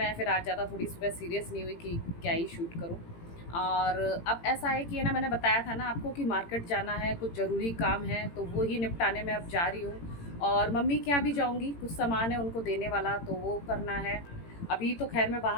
फिर आज ज़्यादा थोड़ी सुबह सीरियस नहीं हुई कि क्या ही शूट करूँ। और अब ऐसा है कि है ना, मैंने बताया था ना आपको कि मार्केट जाना है, कुछ ज़रूरी काम है, तो वो ही निपटाने में अब जा रही हूँ। और मम्मी के यहाँ भी जाऊँगी, कुछ सामान है उनको देने वाला, तो वो करना है। अभी तो खैर मैं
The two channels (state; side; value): late; right; 18 ms